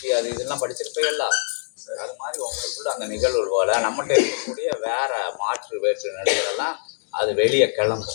அது இதெல்லாம் படிச்சிருப்பீங்கல்ல. அது மாதிரி உங்களுக்குள்ள அந்த நிகழ்வு போல நம்மகிட்ட இருக்கக்கூடிய வேற மாற்று வேற்று நிலைகளெல்லாம் அது வெளியே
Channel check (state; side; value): silent; right; digital silence